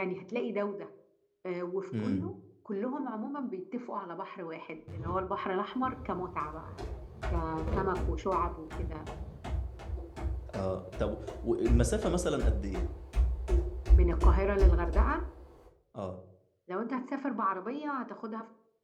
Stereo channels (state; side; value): identical; both; correlation 1.00